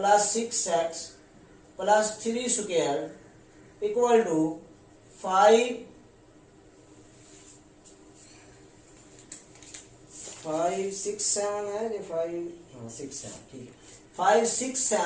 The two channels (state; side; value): identical; both; correlation 1.00